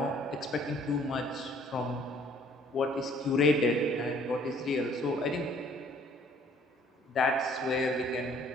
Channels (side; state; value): both; normal; correlation 0.58